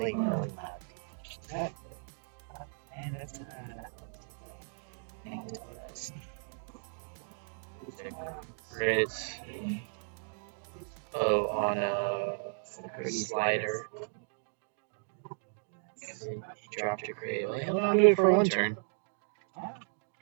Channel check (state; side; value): silent; left; digital silence